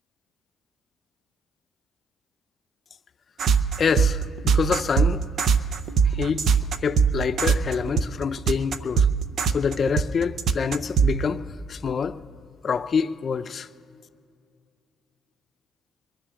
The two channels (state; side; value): normal; both; correlation 0.67